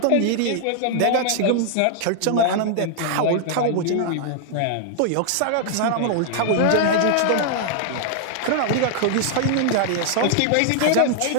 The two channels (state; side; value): different; both; correlation 0.00